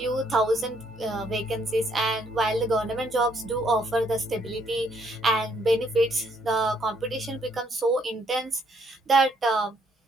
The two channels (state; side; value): normal; both; correlation 0.69